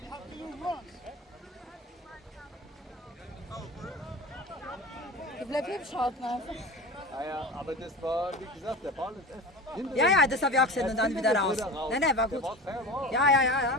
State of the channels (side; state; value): both; normal; correlation 0.32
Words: Det blev pipshot nu. ja. ja, aber das war, wie gesagt, der Ball ist hinter Ja, dem- ja, das habe ich auch gesehen und dann wieder raus. Nein, war Der gut. war fair raus. Ja.